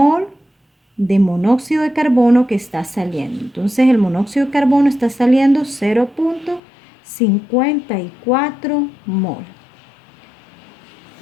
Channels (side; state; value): right; drops out; at 6.6 s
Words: de monóxido de carbono que está saliendo. Entonces el monóxido de carbono está saliendo 0.54 mol.